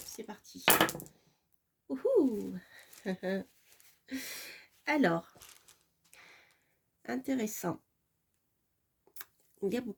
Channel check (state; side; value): identical; both; correlation 1.00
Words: c'est parti. Ouhou. Alors, intéressant. Il y a